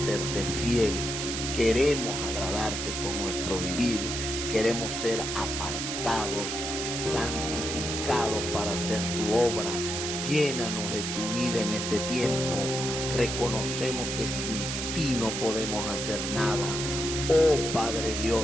serte fiel. Queremos agradarte con nuestro vivir. Queremos ser apartados, santificados para hacer tu obra. Llénanos de tu vida en este tiempo. Reconocemos que sin ti no podemos hacer nada. Oh Padre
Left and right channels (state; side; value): noise; right; hiss, 3 dB below the sound